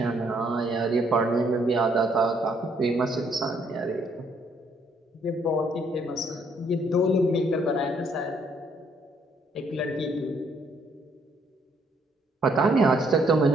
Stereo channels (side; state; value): both; normal; correlation 0.68